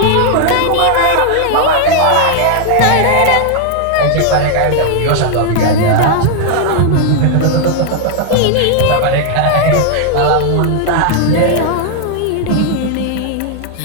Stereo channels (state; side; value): different; both; correlation 0.00